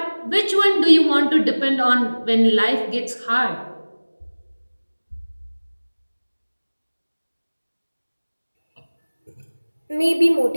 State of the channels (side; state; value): both; inverted; correlation -1.00